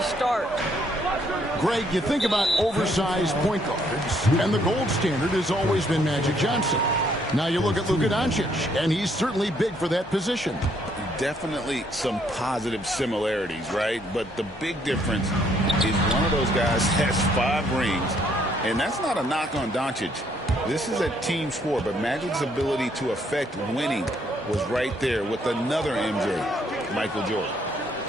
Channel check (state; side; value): normal; both; correlation 0.68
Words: start. Greg, you think about oversized point guards, and the gold standard has always been Magic Johnson. Now you look at Luka Doncic, and he's certainly big for that position. Definitely some positive similarities, right? But the big difference is one of those guys has 5 rings, and that's not a knock on Doncic. This is a team sport, but Magic's ability to affect winning was right there with another MJ, Michael Jordan.